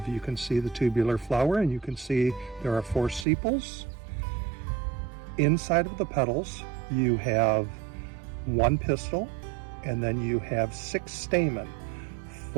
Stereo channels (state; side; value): drops out; left; at 3.2 s